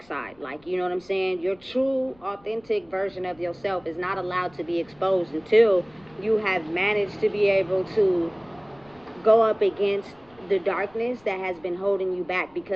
side. Like, you know what I'm saying? Your true, authentic version of yourself is not allowed to be exposed until you have managed to be able to go up against the darkness that has been holding you back.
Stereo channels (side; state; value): left; noise; rumble, 29 dB below the sound